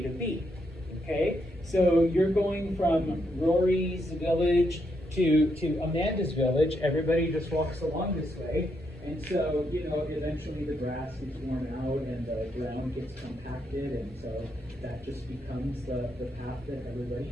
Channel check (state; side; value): normal; both; correlation 0.79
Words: to B. Okay, so you're going from Rory's village to Amanda's village. Everybody just walks along this way, and so eventually the grass gets worn out and the ground gets compacted, and so that just becomes the path that everybody